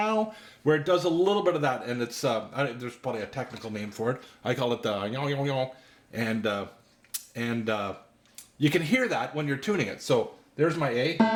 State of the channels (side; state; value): both; identical; correlation 1.00